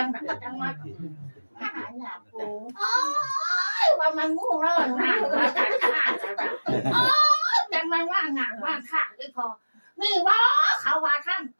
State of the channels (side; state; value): both; inverted; correlation -1.00